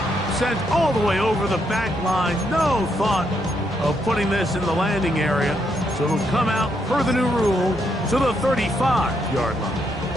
sent all the way over the back line. No thought of putting this in the landing area. So it'll come out, per the new rule, to the 35-yard line.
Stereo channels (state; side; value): normal; both; correlation 0.77